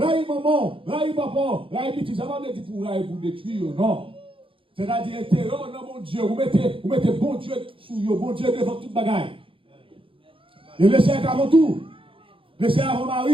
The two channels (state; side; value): late; left; 0.25 ms